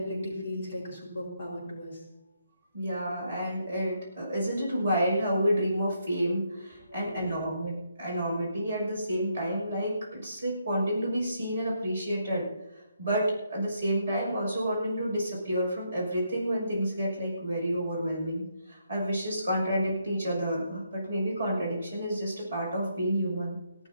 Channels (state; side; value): inverted; both; correlation -0.77